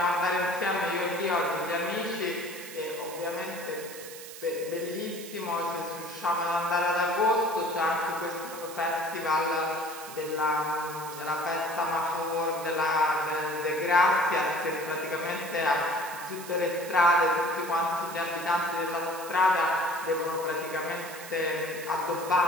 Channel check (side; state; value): right; noise; hiss, 13 dB below the sound